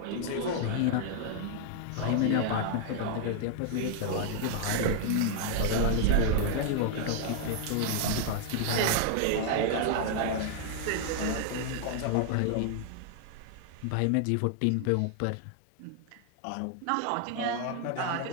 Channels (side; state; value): both; different; correlation -0.01